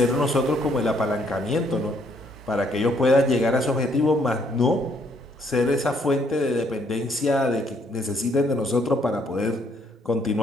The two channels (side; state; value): both; normal; correlation 0.68